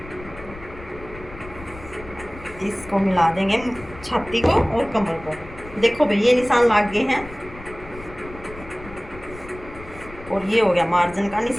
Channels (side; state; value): left; noise; rumble, 16 dB below the sound